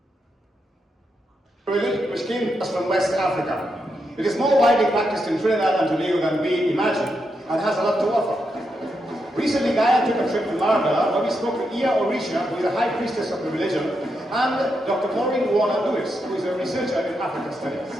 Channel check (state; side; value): normal; both; correlation 0.83